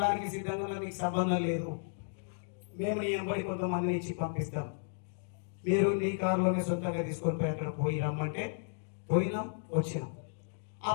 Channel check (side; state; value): right; silent; digital silence